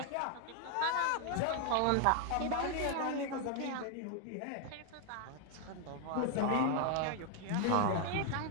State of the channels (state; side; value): different; both; correlation 0.00